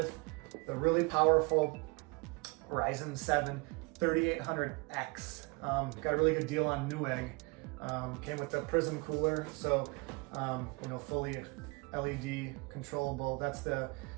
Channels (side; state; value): left; quieter; 28.4 dB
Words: the really powerful Ryzen 7 3800X. Got a really good deal on Newegg. Came with the Prism cooler, so fully LED controllable. That's the